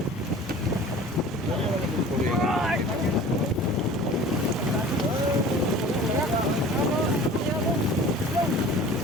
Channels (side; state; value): both; normal; correlation 0.43